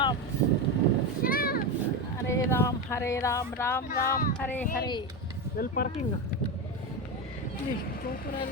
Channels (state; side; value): normal; both; correlation 0.16